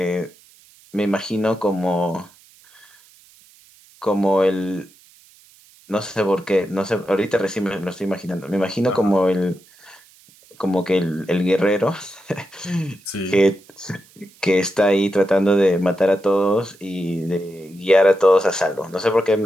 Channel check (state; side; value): noise; right; hiss, 27 dB below the sound